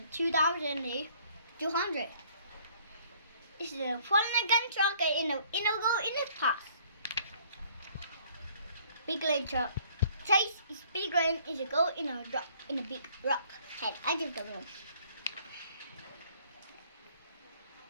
2,200. It's a Mulligan truck in a go in a pass. Big leg truck. Chase is big leg is a go in a rock in a big rock head. I don't know.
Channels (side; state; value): both; inverted; correlation -0.59